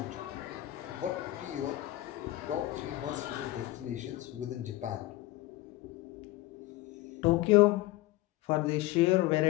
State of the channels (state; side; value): quieter; right; 17.3 dB